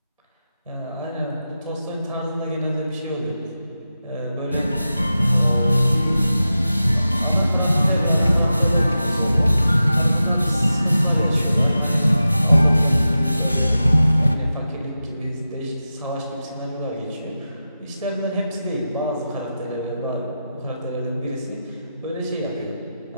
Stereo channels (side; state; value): both; inverted; correlation -0.92